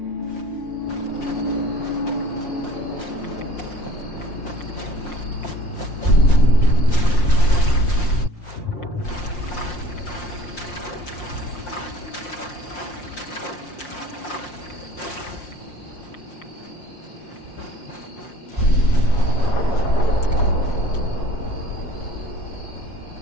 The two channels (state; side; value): late; right; 5.6 ms